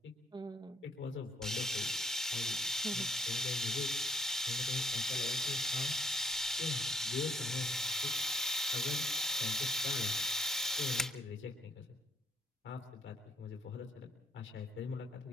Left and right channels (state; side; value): normal; both; correlation 0.67